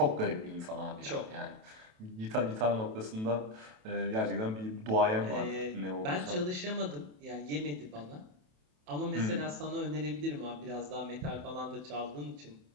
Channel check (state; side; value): late; left; 27 ms